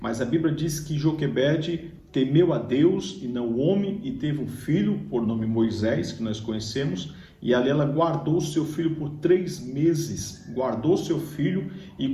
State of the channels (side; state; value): both; identical; correlation 1.00